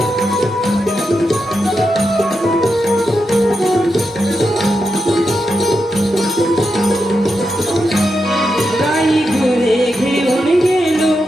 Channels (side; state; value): both; normal; correlation 0.86